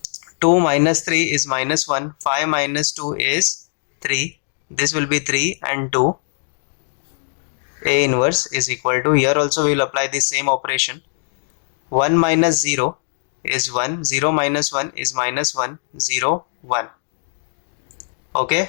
2 minus 3 is minus 1, 5 minus 2 is 3. This will be 3 and 2. A inverse is equal to, here also we will apply the same operation. 1 minus 0 is 1, 0 minus 1 is minus 1, 0, 1. Okay,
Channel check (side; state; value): right; silent; digital silence